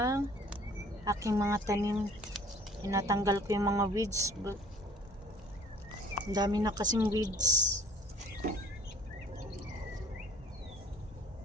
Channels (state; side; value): normal; both; correlation 0.52